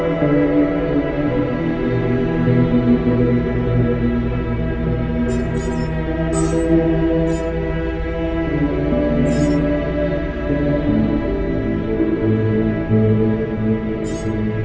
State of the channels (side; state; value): both; identical; correlation 1.00